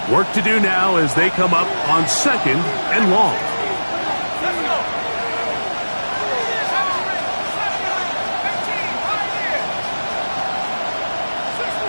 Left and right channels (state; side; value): inverted; both; correlation -1.00